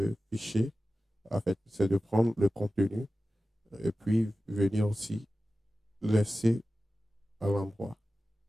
fichier, en fait, c'est de prendre le contenu et puis venir aussi laisser à l'endroit.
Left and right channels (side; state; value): both; normal; correlation 0.94